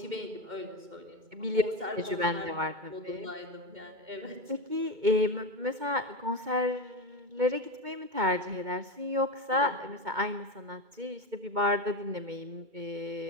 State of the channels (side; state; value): left; late; 2.2 ms